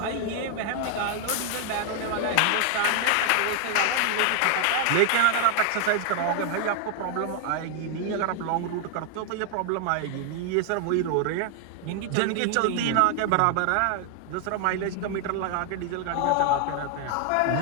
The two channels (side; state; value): both; different; correlation 0.00